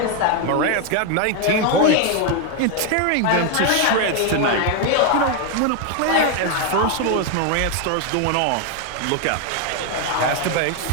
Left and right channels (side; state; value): both; different; correlation 0.01